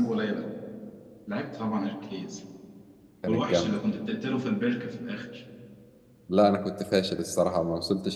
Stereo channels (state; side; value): identical; both; correlation 1.00